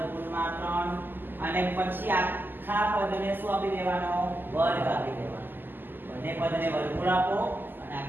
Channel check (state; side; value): late; left; 0.092 ms